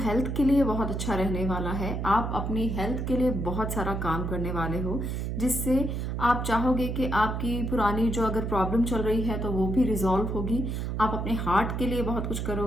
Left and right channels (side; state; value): right; noise; hum, 2 dB below the sound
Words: के लिए बहुत अच्छा रहने वाला है। आप अपनी हेल्थ के लिए बहुत सारा काम करने वाले हो, जिससे आप चाहोगे कि आपकी पुरानी जो अगर प्रॉब्लम चल रही है तो वो भी रिजॉल्व होगी। आप अपने हार्ट के लिए बहुत कुछ